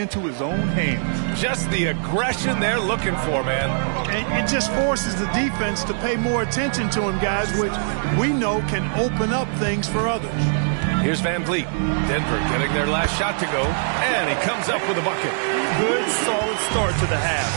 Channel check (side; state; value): left; silent; digital silence